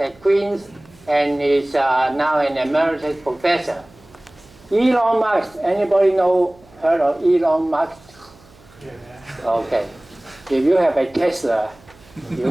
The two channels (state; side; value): noise; right; hum, 26 dB below the sound